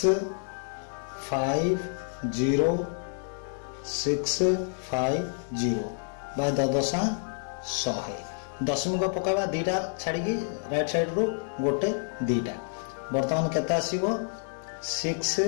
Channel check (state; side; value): silent; right; 59 dB below the other